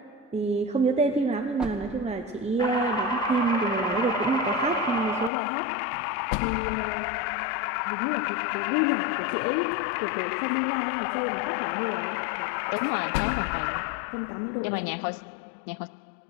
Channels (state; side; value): drops out; right; at 5.3 s